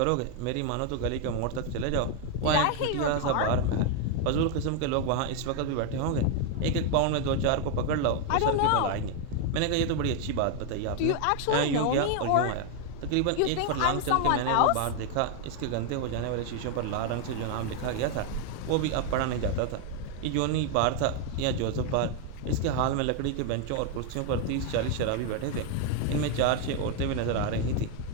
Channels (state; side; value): different; both; correlation 0.01